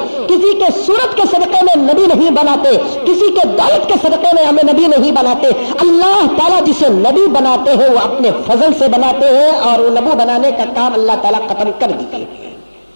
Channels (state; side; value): inverted; both; correlation -1.00